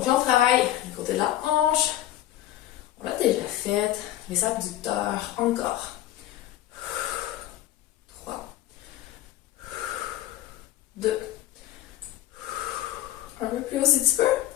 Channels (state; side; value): quieter; right; 13.5 dB